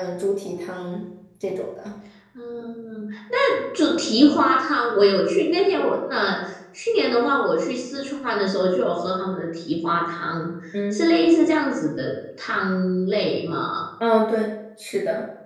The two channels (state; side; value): identical; both; correlation 1.00